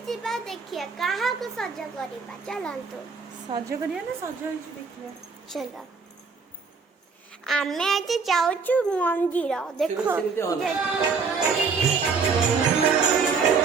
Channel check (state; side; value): quieter; left; 5.1 dB